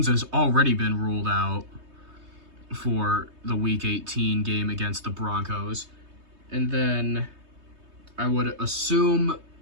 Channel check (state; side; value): late; left; 3.2 ms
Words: has already been ruled out for the Week 18 game against the Broncos. And then I would assume